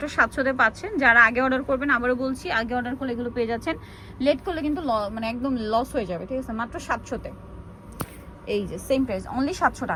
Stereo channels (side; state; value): both; identical; correlation 1.00